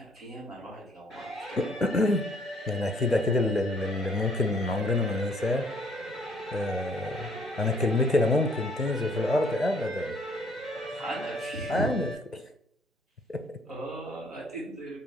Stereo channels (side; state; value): both; normal; correlation 0.62